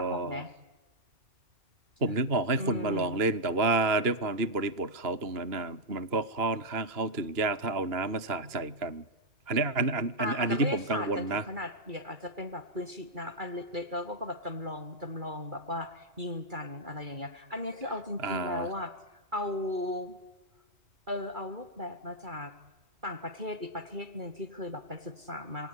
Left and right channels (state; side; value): late; left; 2.9 ms